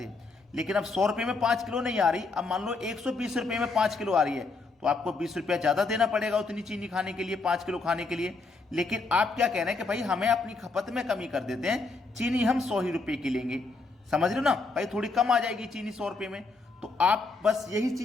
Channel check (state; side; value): quieter; right; 3.8 dB